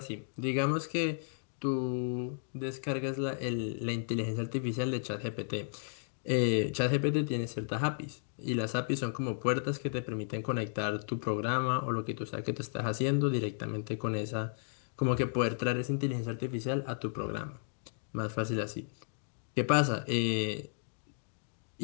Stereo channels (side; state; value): right; silent; digital silence